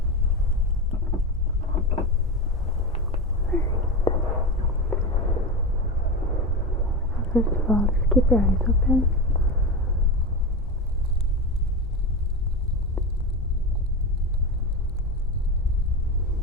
First of all, just keep your eyes open.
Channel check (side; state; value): both; normal; correlation 0.20